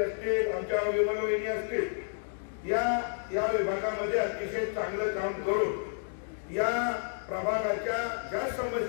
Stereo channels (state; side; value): silent; right; digital silence